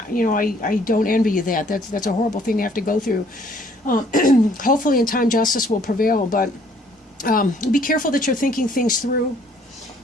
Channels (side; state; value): both; normal; correlation 0.61